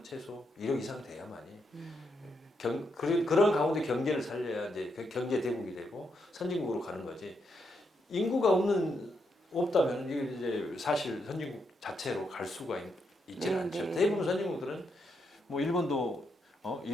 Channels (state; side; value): normal; both; correlation 0.80